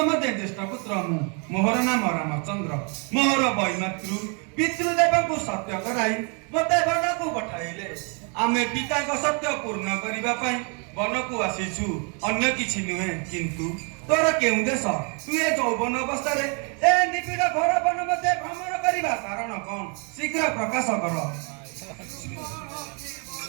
मध्य ज्येष्ठ पुत्र मोहर नाम रामचंद्र मोहर वैमातृ पितृदेव को सत्य कराई मते वन को पठाइले आमे पिता को सत्य पूर्ण करने वन को आसीचु अन्य किछि नुहे किंतु तोर केउ देश तु ए यौवन अवस्था रे ए निबिड़ घर वन मध्य भ्रमण करिबा कारण कोन शीघ्र प्रकाश कर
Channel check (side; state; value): left; quieter; 36.2 dB